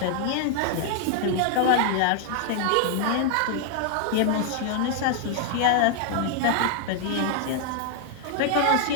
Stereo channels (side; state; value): both; different; correlation 0.00